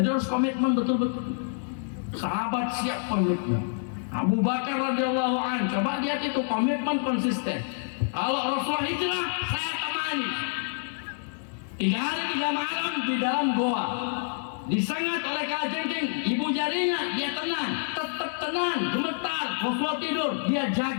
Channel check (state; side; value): silent; right; digital silence